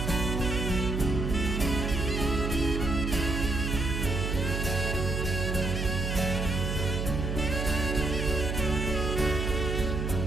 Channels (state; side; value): noise; right; hum, 1 dB below the sound